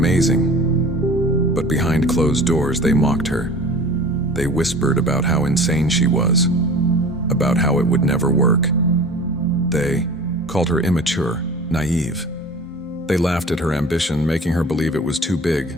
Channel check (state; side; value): normal; both; correlation 0.41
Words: But behind closed doors, they mocked her. They whispered about how insane she was, about how it would never work. They called her immature, naive. They laughed at her ambition, making her believe it was too big,